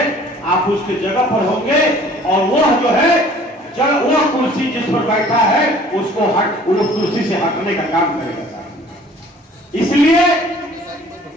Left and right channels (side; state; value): both; normal; correlation 0.52